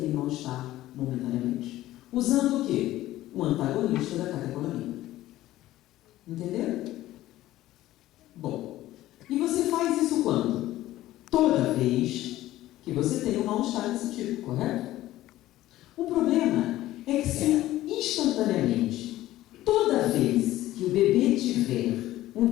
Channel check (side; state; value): right; quieter; 15.2 dB